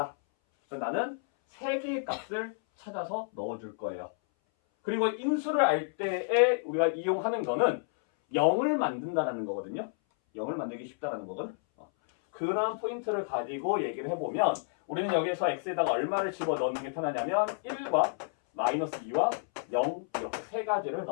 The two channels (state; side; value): silent; right; 58 dB below the other